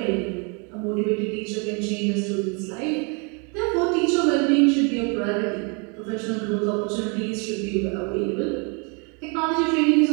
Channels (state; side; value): quieter; left; 34.3 dB